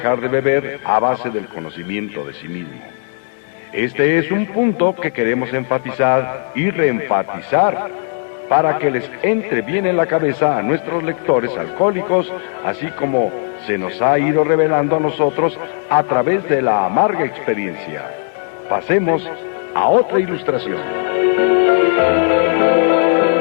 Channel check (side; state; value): right; silent; 68 dB below the other